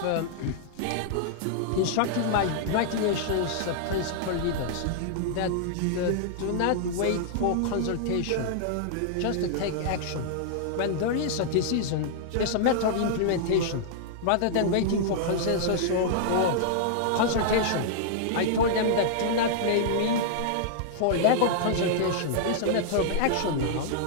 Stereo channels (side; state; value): both; different; correlation -0.01